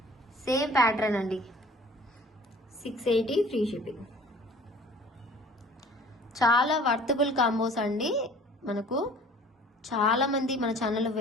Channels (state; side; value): normal; both; correlation 0.49